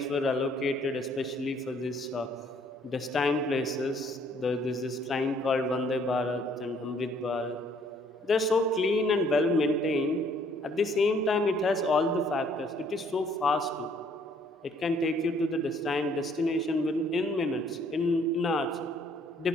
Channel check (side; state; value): both; normal; correlation 0.63